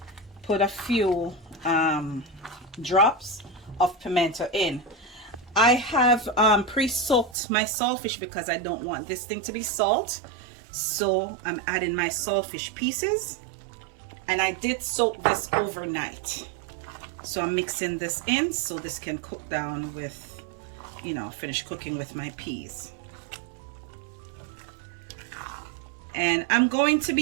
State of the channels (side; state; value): left; drops out; at 7.4 s